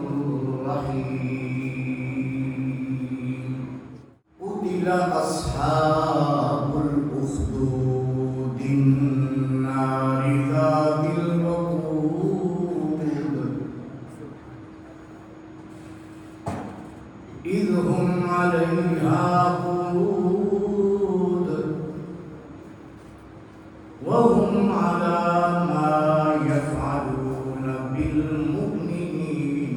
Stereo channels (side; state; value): both; identical; correlation 1.00